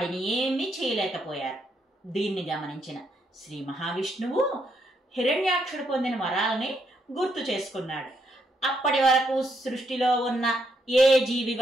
ఏమీ చేయలేకపోయారు. దీన్ని గమనించిన శ్రీ మహావిష్ణువు హిరణ్యాక్షుడు పొందిన వరాలని గుర్తు చేసుకున్నాడు. అప్పటి వరకు సృష్టిలో ఉన్న ఏ జీవి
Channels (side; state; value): both; normal; correlation 0.76